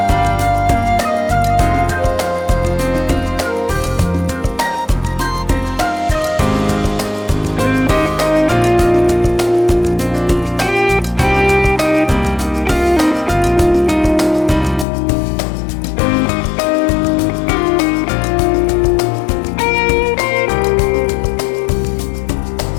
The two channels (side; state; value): right; drops out; at 14.9 s